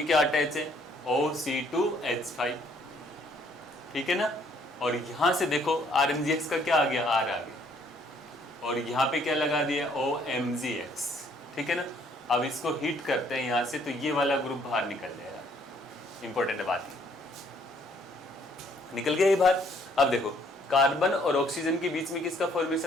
क्या अटैच है, OC2H5, ठीक है ना। और यहां से देखो RMGX का क्या आ गया, R आ गया, और यहाँ पे क्या लगा दिया, OMGX, ठीक है ना। अब इसको हीट करते हैं यहाँ से तो ये वाला ग्रुप बाहर निकल जाएगा। इंपॉर्टेंट बात है, निकल गया ये बाहर। अब देखो कार्बन और ऑक्सीजन के बीच में किसका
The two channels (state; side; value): normal; both; correlation 0.64